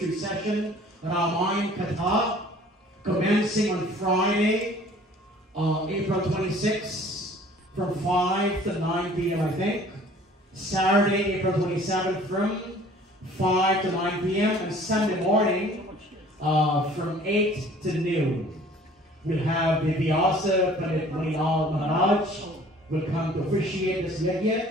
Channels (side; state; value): both; normal; correlation 0.52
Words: session Ramayana Katha, commencing on Friday, April 26th, from 5 to 9 p.m. I think. Saturday, April 27th, from 5 to 9 p.m. and Sunday morning from 8 to noon. We'll have the Vyasa Pandit Manilal Maharaj will come to officiate this